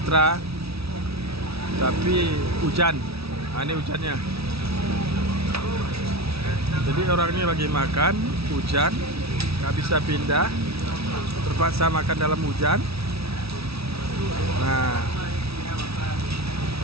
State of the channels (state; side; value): late; left; 0.77 ms